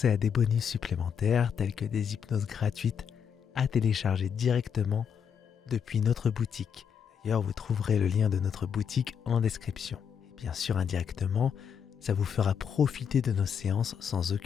à des bonus supplémentaires tels que des hypnoses gratuites à télécharger directement depuis notre boutique. D'ailleurs, vous trouverez le lien de notre boutique en description. Et bien sûr, indirectement, ça vous fera profiter de nos séances sans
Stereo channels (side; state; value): right; quieter; 7.4 dB